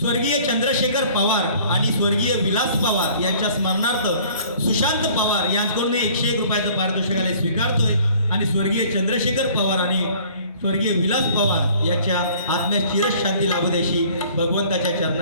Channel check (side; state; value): both; inverted; correlation -0.53